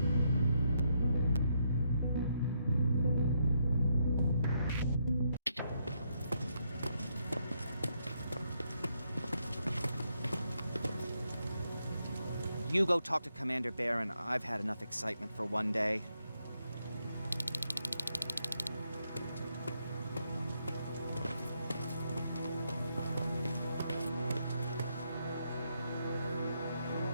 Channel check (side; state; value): both; inverted; correlation -0.78